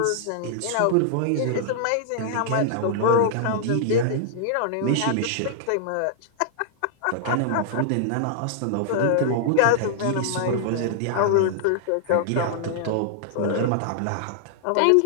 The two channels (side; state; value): both; different; correlation -0.01